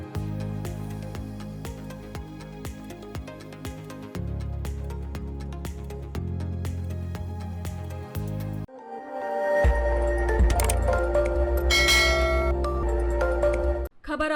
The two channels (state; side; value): identical; both; correlation 1.00